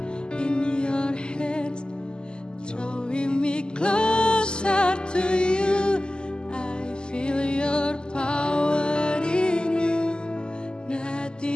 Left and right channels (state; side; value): late; right; 0.047 ms